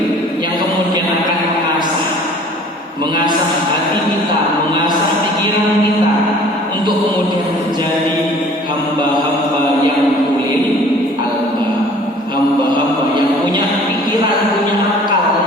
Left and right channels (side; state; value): both; normal; correlation 0.50